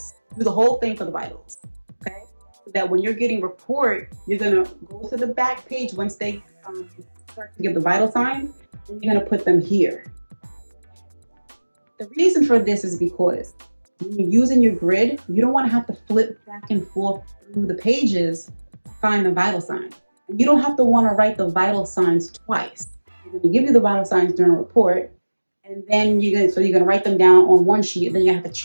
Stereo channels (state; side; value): inverted; both; correlation -1.00